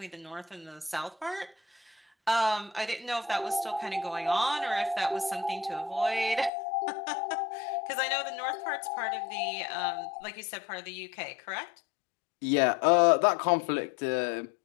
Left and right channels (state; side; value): drops out; right; at 6.5 s